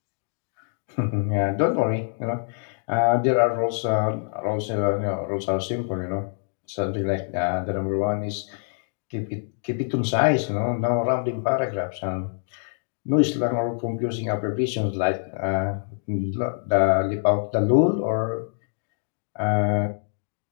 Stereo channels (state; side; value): silent; right; 62 dB below the other